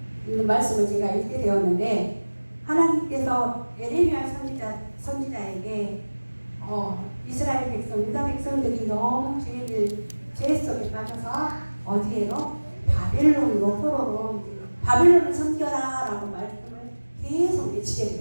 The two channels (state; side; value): inverted; both; correlation -1.00